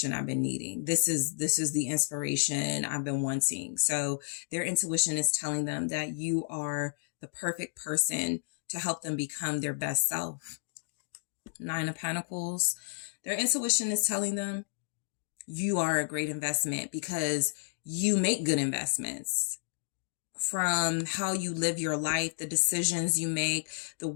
I've been needing. This is the inspiration I've been wanting. So their intuition is telling them that you are the perfect person to help them become their best self. 9 of Pentacles. Their intuition is telling them you are a great investment because you make good investments. From how you live your life, the decisions you make, the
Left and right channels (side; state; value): right; silent; digital silence